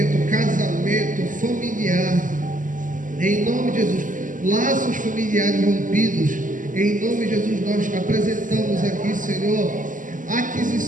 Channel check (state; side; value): late; left; 0.38 ms